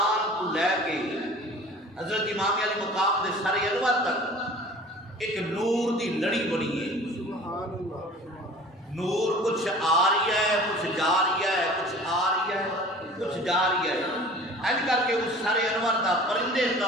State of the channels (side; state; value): both; normal; correlation 0.44